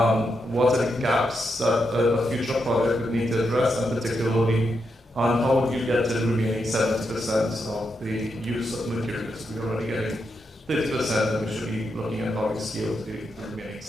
are the gaps that a future project would need to address, and particularly on how would you get to the remaining 70% of the use of materials? We're already getting 30%, and we should be looking at how we scale to the remaining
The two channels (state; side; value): normal; both; correlation 0.83